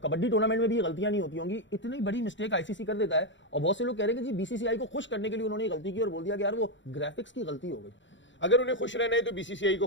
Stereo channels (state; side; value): late; right; 0.54 ms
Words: कबड्डी टूर्नामेंट में भी गलतियां नहीं होती होंगी, इतनी बड़ी मिस्टेक आईसीसी कर देता है। और बहुत से लोग कह रहे हैं कि जी बीसीसीआई को खुश करने के लिए उन्होंने गलती की और बोल दिया कि यार वो ग्राफिक्स की गलती हो गई। अगर उन्हें खुश रहना है तो बीसीसीआई को